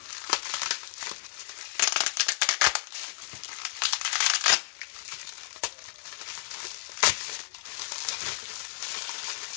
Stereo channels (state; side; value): silent; right; digital silence